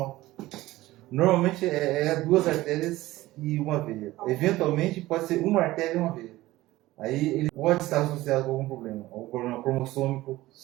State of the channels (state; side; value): quieter; left; 17.4 dB